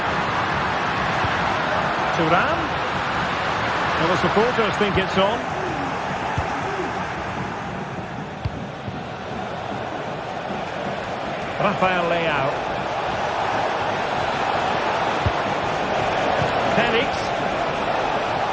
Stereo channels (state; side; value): identical; both; correlation 1.00